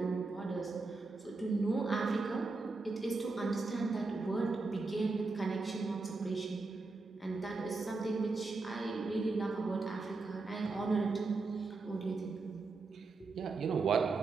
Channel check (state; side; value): quieter; left; 3.8 dB